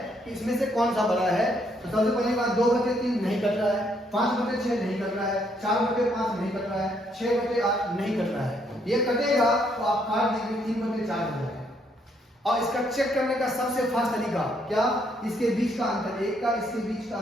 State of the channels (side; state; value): both; normal; correlation 0.71